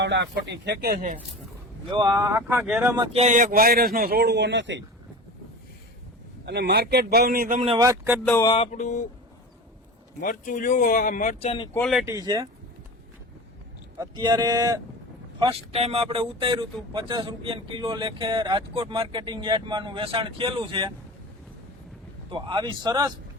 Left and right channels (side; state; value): both; normal; correlation 0.33